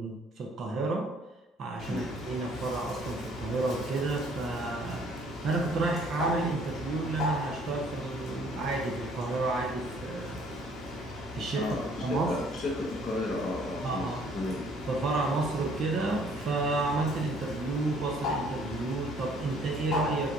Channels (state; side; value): normal; both; correlation 0.60